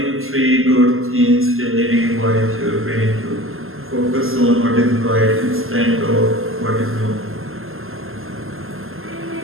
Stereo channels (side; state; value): left; late; 0.61 ms